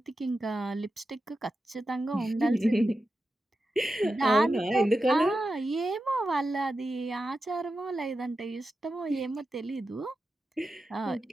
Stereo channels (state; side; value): normal; both; correlation 0.91